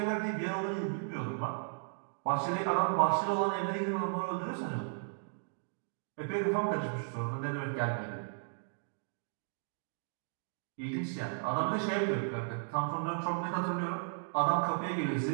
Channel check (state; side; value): silent; left; digital silence